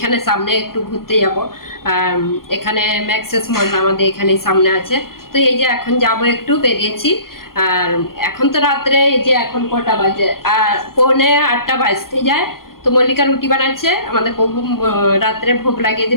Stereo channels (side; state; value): right; late; 0.92 ms